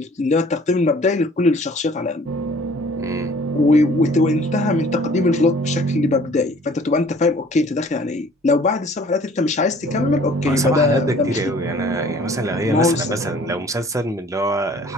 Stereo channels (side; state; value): both; normal; correlation 0.53